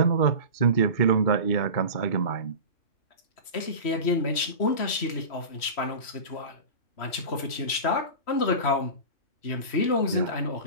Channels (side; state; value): right; late; 3.1 ms